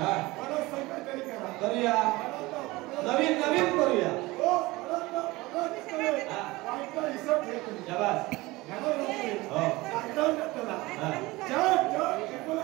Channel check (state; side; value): quieter; left; 21.0 dB